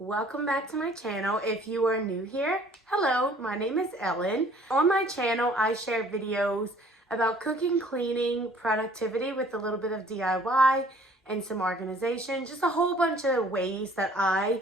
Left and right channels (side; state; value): both; normal; correlation 0.55